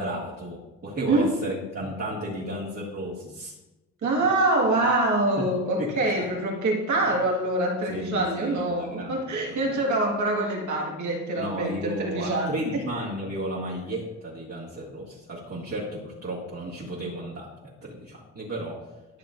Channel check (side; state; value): both; normal; correlation 0.08